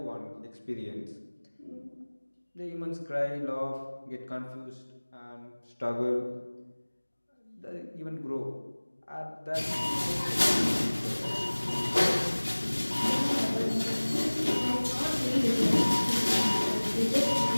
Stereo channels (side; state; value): both; inverted; correlation -1.00